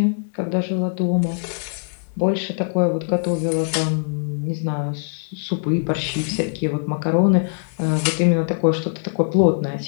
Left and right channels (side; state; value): right; silent; digital silence